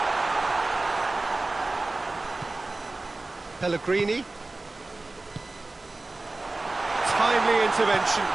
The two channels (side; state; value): left; quieter; 3.1 dB